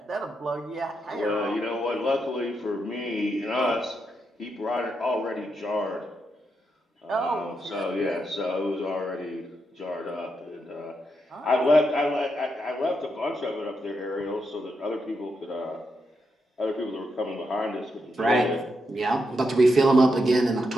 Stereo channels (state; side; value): normal; both; correlation 0.83